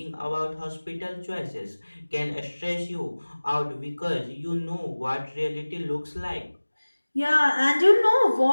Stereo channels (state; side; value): inverted; both; correlation -1.00